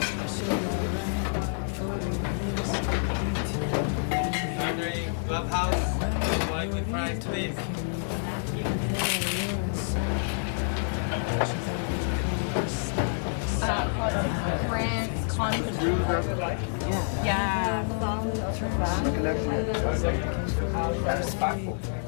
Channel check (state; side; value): silent; right; digital silence